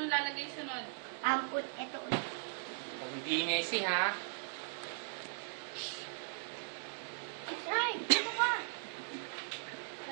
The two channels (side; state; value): left; silent; digital silence